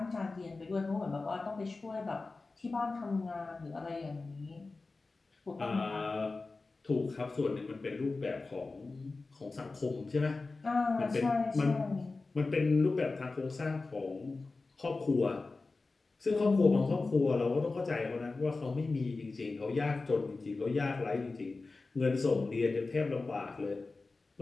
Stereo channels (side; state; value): right; quieter; 3.7 dB